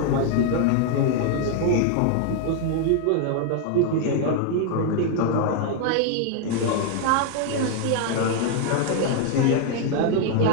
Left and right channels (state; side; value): different; both; correlation 0.00